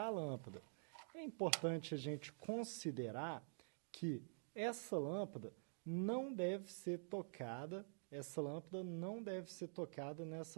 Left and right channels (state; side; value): silent; left; digital silence